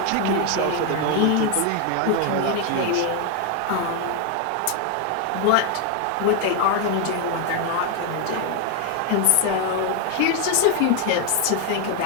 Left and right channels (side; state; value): both; different; correlation 0.01